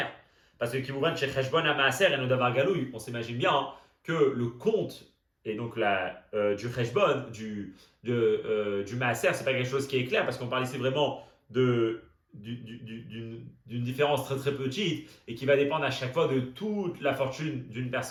Parce que Kimouvan chez Cheshbon à Maaser et Nodavar Galouy, on s'imagine bien que le compte et donc du Cheshbon, du Maaser, c'est pas quelque chose qui est clair parce qu'on parle ici vraiment d'une différence très très petite et qui va dépendre à chaque fois de toute la fortune d'une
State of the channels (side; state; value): both; identical; correlation 1.00